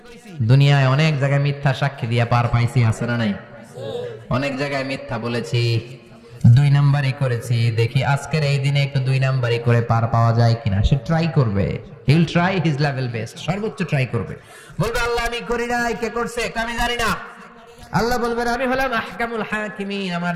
দুনিয়ায় অনেক জায়গায় মিথ্যা সাক্ষী দিয়া পার পাইছি, আছে না নাই? অনেক জায়গায় মিথ্যা বলেছি, 2 নাম্বারই করেছি, দেখি আজকের এই দিনে একটু 2 নাম্বারই করে পার পাওয়া যায় কিনা। সে ট্রাই করবে, he will try his level best, সর্বোচ্চ ট্রাই করবে। বলবে আল্লাহ আমি করি নাই, কে করছে আমি জানি না। আল্লাহ বলবেন আমি হলাম আহকামুল হাকিমিন, আমার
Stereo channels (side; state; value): both; identical; correlation 1.00